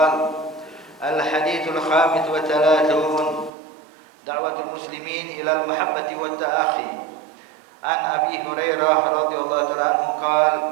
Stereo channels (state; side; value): drops out; left; at 3.5 s